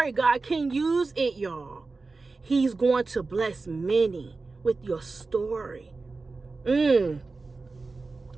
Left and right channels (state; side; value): quieter; left; 3.8 dB